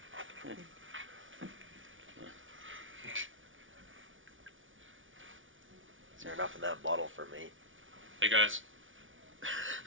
Is there enough of that bottle for me? Hey guys.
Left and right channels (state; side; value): late; left; 0.57 ms